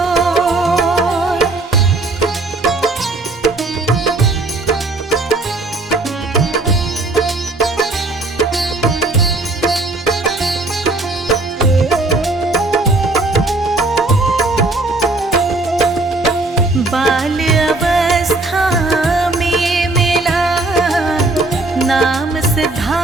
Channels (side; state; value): left; quieter; 3.1 dB